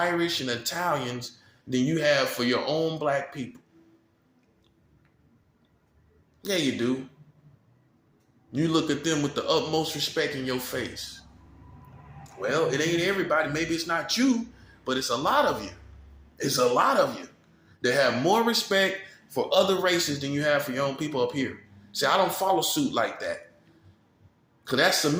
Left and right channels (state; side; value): identical; both; correlation 1.00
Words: and Italians than you have for your own black people. Yeah, you do. You look at them with the utmost respect in your face. Well, it ain't everybody. Maybe it's not you, but it's a lot of you. It's a lot of you that have more respect for other races than you have for your own people up here. See, I don't follow suit like that. Because that's